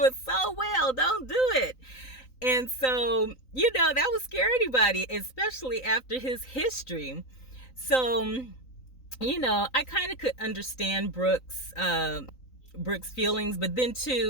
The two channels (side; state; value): right; late; 3.9 ms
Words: it so well. Don't do it. And so, that would scare anybody, especially after his history. So, I kind of could understand Brooke's feelings, but then